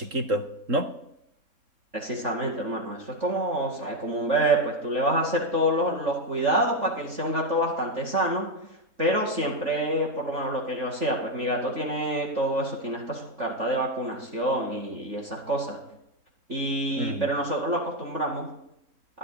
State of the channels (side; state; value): left; late; 3.5 ms